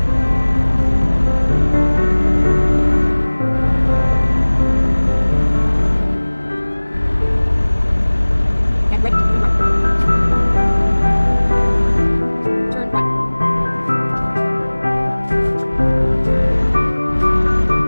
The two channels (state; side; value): inverted; both; correlation -1.00